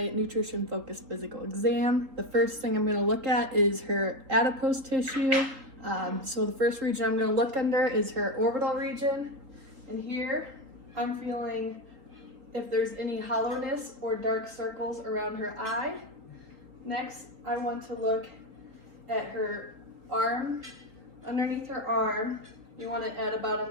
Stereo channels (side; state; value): left; late; 3.8 ms